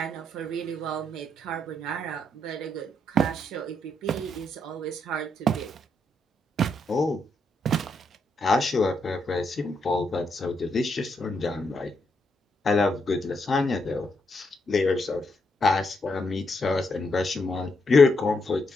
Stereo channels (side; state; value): both; normal; correlation 0.79